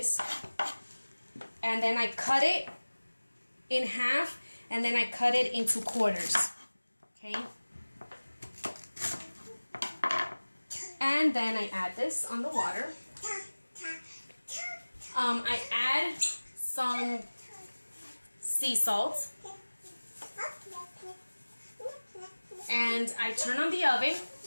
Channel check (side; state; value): both; inverted; correlation -1.00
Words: and then I cut it in half, and then I cut it into quarters, okay? And then I add this on the water. I add some sea salt, and I turn on the oven,